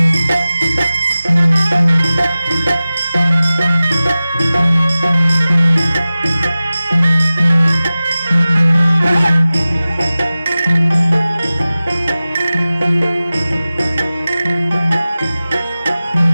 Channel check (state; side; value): inverted; both; correlation -0.96